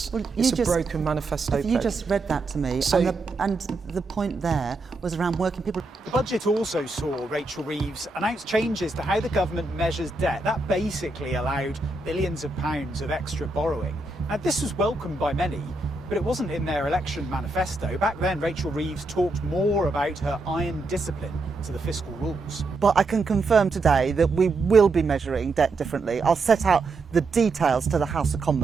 Well, it's a broken manifesto pledge. You just read that to me, and the point there was around working people. The budget also saw Rachel Reeves announce changes to how the government measures debt. That basically allowed billions of pounds of extra borrowing. Now, this was welcomed by many, but it wasn't in their election manifesto. Back then, Rachel Reeves talked more about her iron discipline to the fiscal rules. But I can confirm today that we will be measuring debt differently. I'll set out the details to the House of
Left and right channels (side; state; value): left; quieter; 3.3 dB